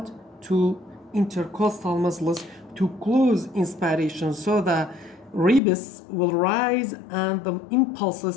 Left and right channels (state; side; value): drops out; right; at 5.6 s